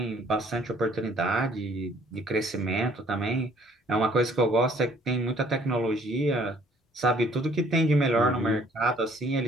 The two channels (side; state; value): both; normal; correlation 0.59